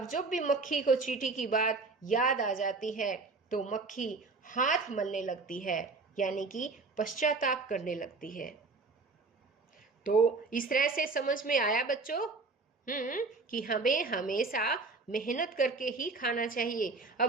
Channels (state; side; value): quieter; left; 3.9 dB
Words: भी मक्खी को चींटी की बात याद आ जाती है तो मक्खी हाथ मलने लगती है, यानी कि पश्चाताप करने लगती है। तो इस तरह से समझ में आया बच्चों कि हमें हमेशा मेहनत करके ही खाना चाहिए।